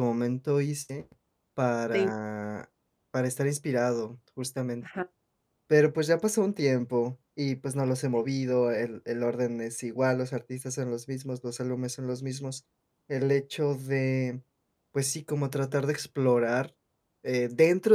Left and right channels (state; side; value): identical; both; correlation 1.00